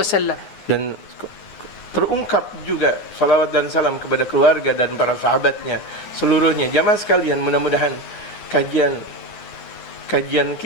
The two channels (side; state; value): right; late; 9.6 ms